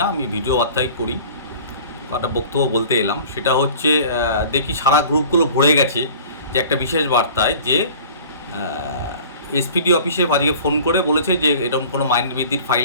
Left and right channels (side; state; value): both; inverted; correlation -0.44